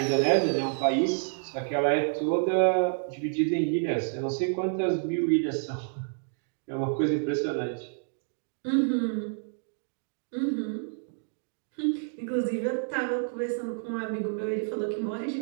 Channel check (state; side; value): silent; left; digital silence